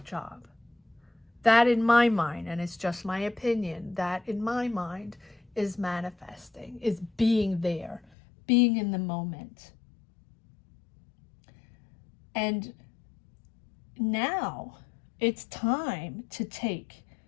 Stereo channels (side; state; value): right; drops out; at 8.1 s